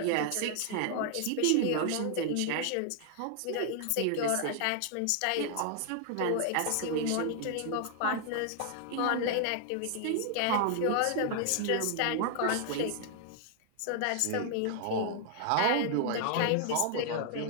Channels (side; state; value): both; different; correlation 0.00